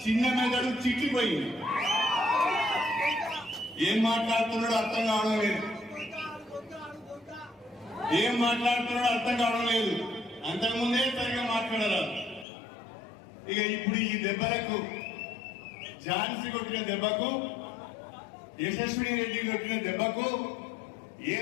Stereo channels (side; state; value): right; drops out; at 12.5 s